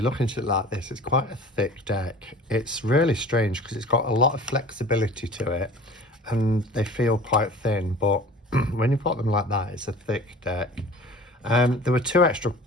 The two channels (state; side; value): normal; both; correlation 0.43